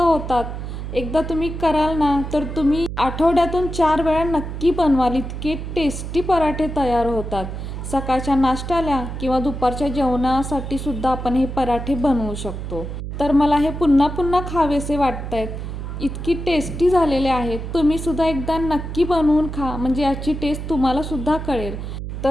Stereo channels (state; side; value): noise; right; hum, 7 dB below the sound